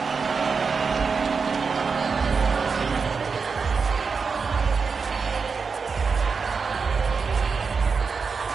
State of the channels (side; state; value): left; quieter; 5.2 dB